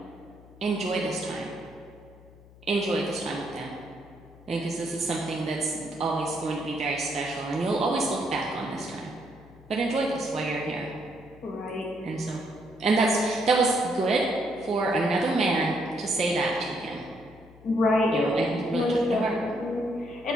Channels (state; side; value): noise; left; hum, 23 dB below the sound